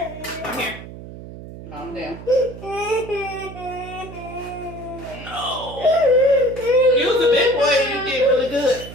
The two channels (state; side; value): noise; right; hum, 13 dB below the sound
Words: Come here. Calm down. No. You was a big boy and you did really good.